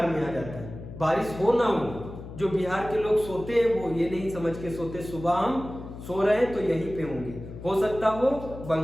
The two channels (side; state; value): left; noise; hum, 12 dB below the sound